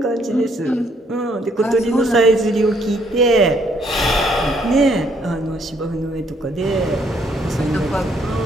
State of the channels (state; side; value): normal; both; correlation 0.68